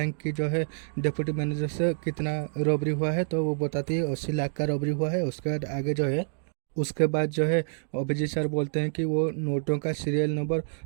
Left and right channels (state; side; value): silent; left; digital silence